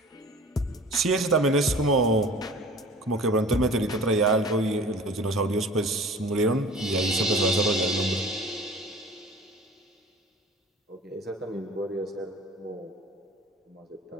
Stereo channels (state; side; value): normal; both; correlation 0.43